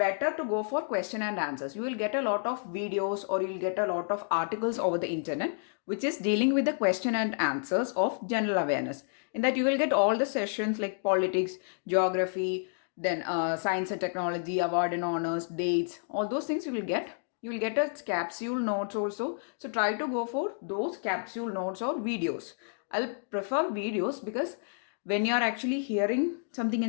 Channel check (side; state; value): right; silent; digital silence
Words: to go for question and answers. You will get a lot of videos or you'll get a lot of articles over the internet which is dealing with the question and answers of general awareness. In that you will get all the sessions like politics, geography, then science and technology, award and honors, dates, all those things you will get. You will get a capsule notes also. So try to go for those capsule notes or videos. I'll prefer videos because when you're actually hearing something